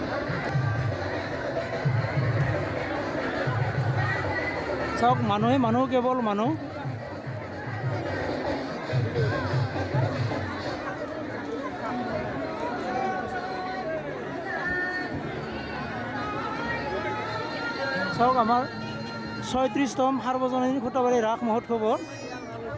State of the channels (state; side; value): identical; both; correlation 1.00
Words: চাওক মানুহে মানুহ, কেৱল মানুহ। চাওক আমাৰ ৩৬তম সাৰ্বজনীন খুঁটাবাৰী ৰাস মহোৎসৱৰ